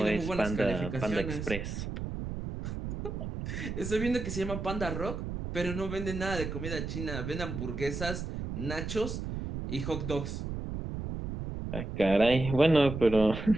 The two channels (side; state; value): right; noise; rumble, 5 dB below the sound